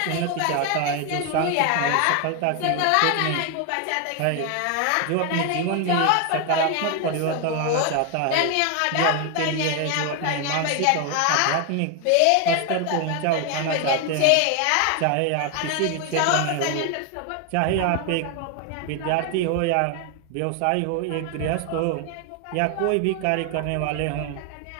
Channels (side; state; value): both; different; correlation 0.01